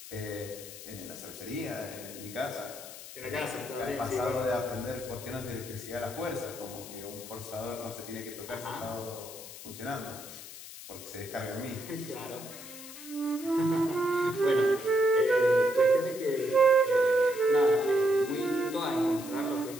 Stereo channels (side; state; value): left; noise; hiss, 13 dB below the sound